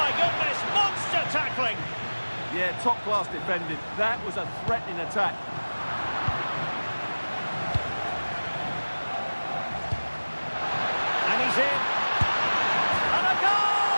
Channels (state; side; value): inverted; both; correlation -1.00